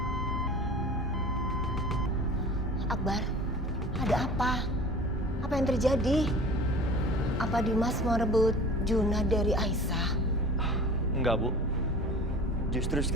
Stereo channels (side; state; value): both; normal; correlation 0.41